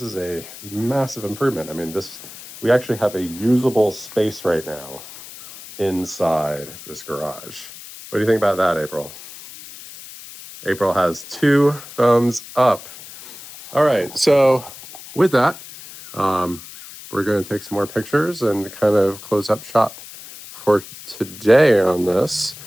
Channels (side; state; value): left; noise; hiss, 15 dB below the sound